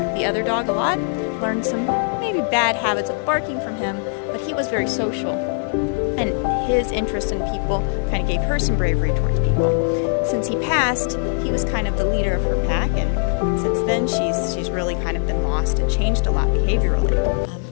the other dog a lot, learned some maybe bad habits of barking from him, but he was very social. And his interest in people kind of gave her some bravery towards people. Since he passed, he was kind of the leader of her pack, and since then she's really kind of been lost and changed a lot behaviorally.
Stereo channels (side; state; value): right; silent; 55 dB below the other